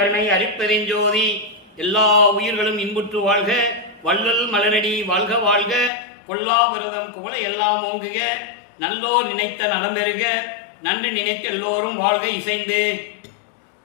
அருட்பெருஞ்சோதி. எல்லா உயிர்களும் இன்புற்று வாழ்க, வள்ளல் மலரடி வாழ்க வாழ்க, கொல்லா விரதம் குவள எல்லாம் ஓங்குக, நல்லோர் நினைத்த நலம் பெறுக, நன்று நினைத்து எல்லோரும் வாழ்க இசைந்து.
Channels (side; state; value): right; drops out; at 5.9 s